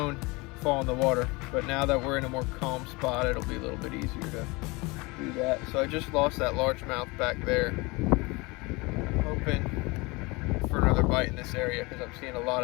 fall in the water. But now that we're in a more calm spot, it'll be a little bit easier to do that. So I just lost that largemouth back there. I'm hoping for another bite in this area because I'm seeing a lot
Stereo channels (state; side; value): quieter; right; 25.1 dB